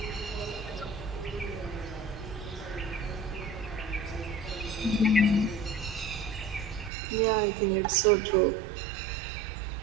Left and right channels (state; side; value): drops out; left; at 6.9 s